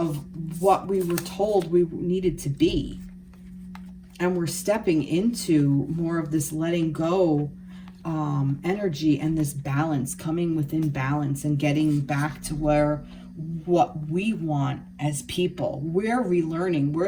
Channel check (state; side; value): identical; both; correlation 1.00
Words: what we were told we needed to be. And we're stepping into more of this letting go energy, and this balance, coming within balance and getting back to what we want as people. We're relearning.